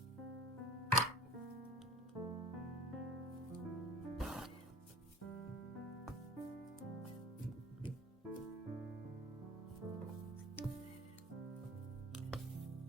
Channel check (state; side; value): normal; both; correlation 0.43